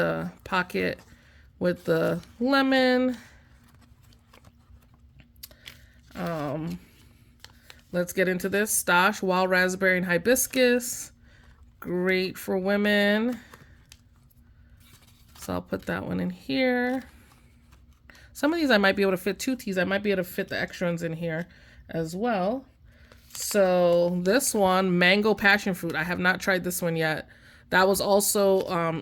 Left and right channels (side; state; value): both; identical; correlation 1.00